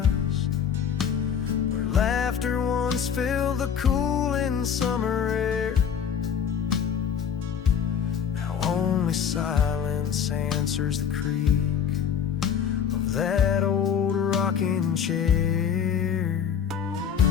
where laughter once filled the cooling summer air. Now only silence answers the creak of that old rocking chair.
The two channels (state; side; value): quieter; right; 7.7 dB